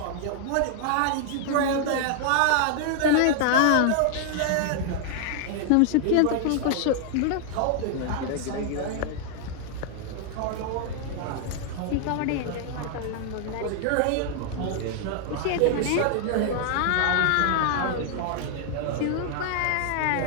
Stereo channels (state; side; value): different; both; correlation 0.00